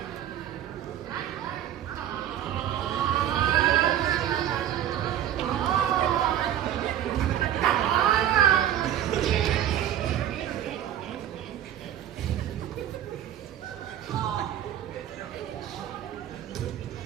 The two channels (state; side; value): quieter; left; 11.2 dB